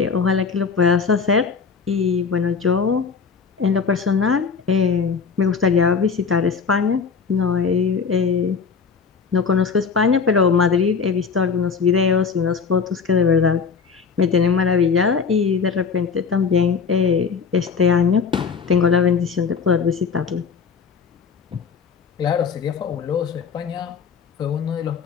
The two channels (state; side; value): quieter; right; 5.8 dB